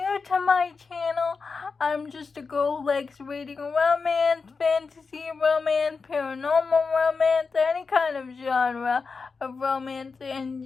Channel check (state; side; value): quieter; right; 4.7 dB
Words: new to my channel, I'm just a girl who likes reading romance, fantasy romance, paranormal romance, any kind of genre of romance